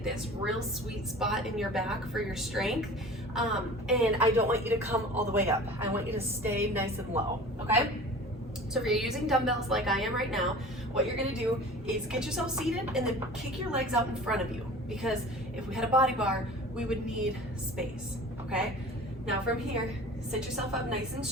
this real sweet spot in your back for your strength, and I don't want you to come all the way up. I want you to stay nice and low, okay? So if you're using dumbbells like I am right now, what you're gonna do is get yourself seated and then kick your legs out in front of you, because if we had a body bar, we would need space, okay? Now from here, sit yourself up nice and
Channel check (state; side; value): normal; both; correlation 0.41